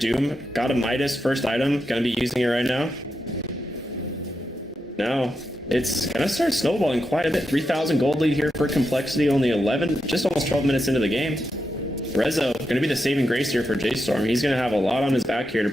got a Midas first item, gonna be using it right now. No, it's gonna start snowballing quite a bit. 3,000 gold lead here for Complexity, only 11, just almost 12 minutes into the game. Rezo gonna be the saving grace here for J.Storm. He's gonna have a lot on his back here to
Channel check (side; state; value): both; normal; correlation 0.86